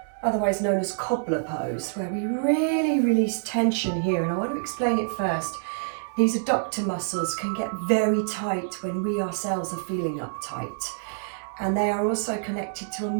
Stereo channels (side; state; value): left; silent; digital silence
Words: otherwise known as Cobbler Pose, where we really release tension here. And I want to explain it first. These adductor muscles can get very tight when we ourselves are feeling uptight. And they are also connected to a